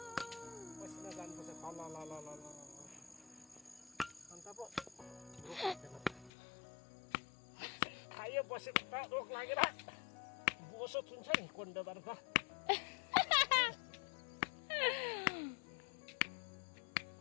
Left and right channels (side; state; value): right; drops out; at 6.3 s